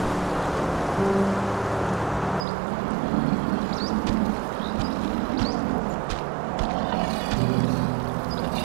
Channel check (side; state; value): left; drops out; at 2.5 s